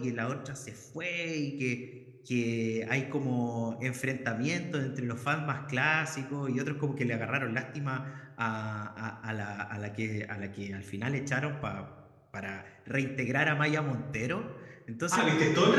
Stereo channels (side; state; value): both; identical; correlation 1.00